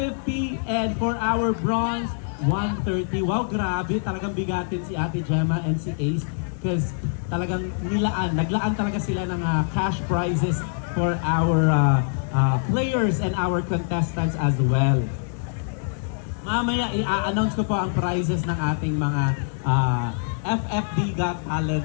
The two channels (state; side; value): silent; right; 62 dB below the other